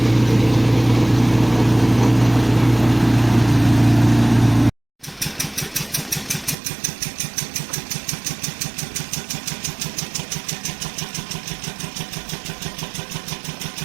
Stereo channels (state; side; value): drops out; left; at 6.6 s